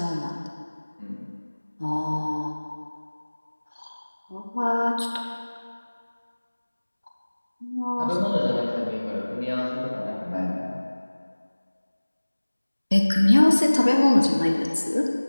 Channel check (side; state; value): both; inverted; correlation -1.00